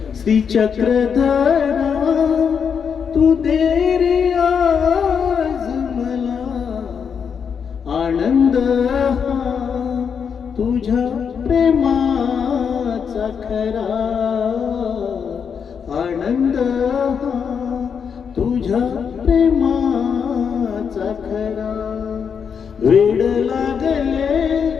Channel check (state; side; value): quieter; right; 6.8 dB